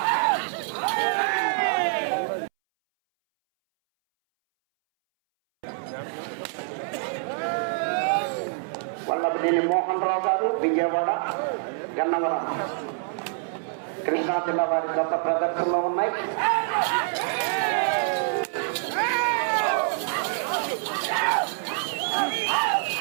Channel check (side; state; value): left; silent; 61 dB below the other